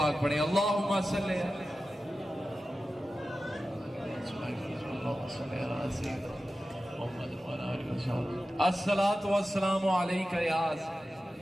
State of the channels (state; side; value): normal; both; correlation 0.94